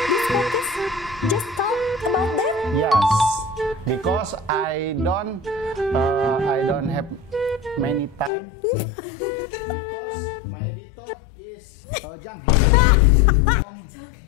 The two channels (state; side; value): drops out; right; at 8.3 s